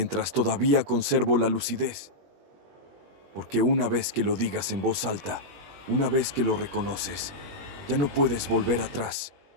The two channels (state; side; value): late; left; 21 ms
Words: todavía conservo la lucidez. Porque una vez que lo digas en voz alta, una vez que lo reconoces, ya no puedes volver atrás.